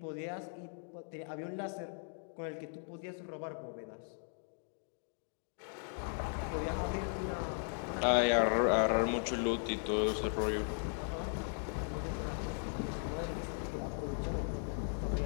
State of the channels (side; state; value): right; silent; 53 dB below the other